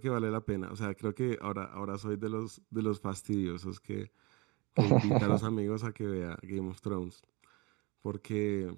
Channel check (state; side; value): quieter; left; 26.5 dB